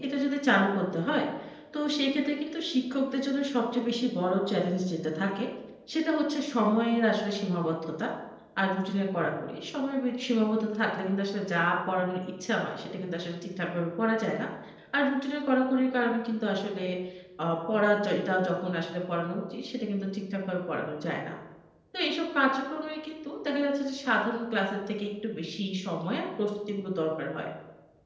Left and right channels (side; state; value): both; identical; correlation 1.00